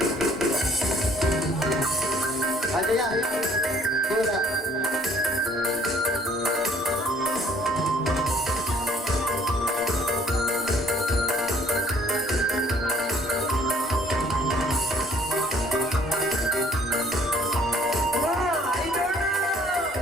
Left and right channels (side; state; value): both; normal; correlation 0.59